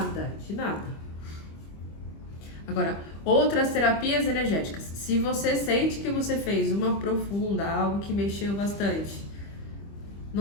de nada. Agora, outras terapias energéticas. Se você sente que você fez uma profunda, algo que mexeu bastante,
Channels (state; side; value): late; right; 25 ms